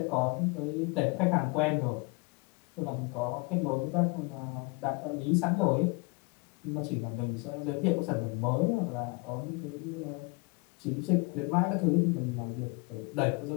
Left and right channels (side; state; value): right; quieter; 29.2 dB